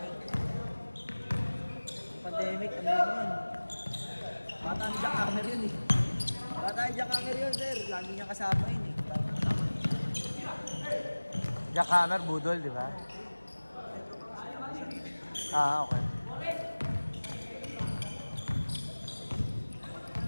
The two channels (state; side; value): inverted; both; correlation -1.00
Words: yun. Pandemic, ano yun? Bata ni Jack Hammer yun eh. Bata ni Jack Hammer yun, sir. Lagi niya kasama yun eh. Jack Hammer, budol, di ba? Ah, okay.